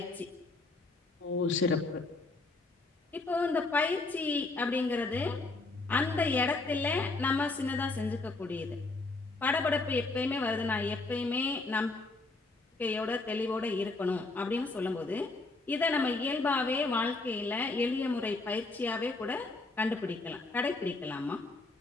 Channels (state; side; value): quieter; right; 3.4 dB